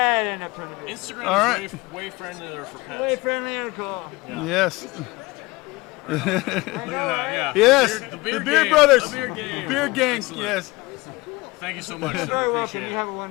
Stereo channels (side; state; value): right; quieter; 22.2 dB